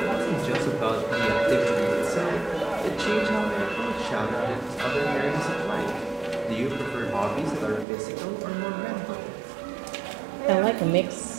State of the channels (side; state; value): left; drops out; at 7.9 s